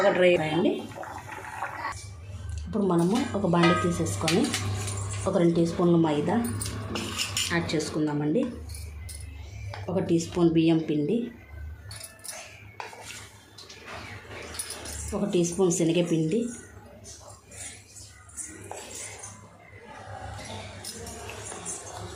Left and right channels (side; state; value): both; identical; correlation 1.00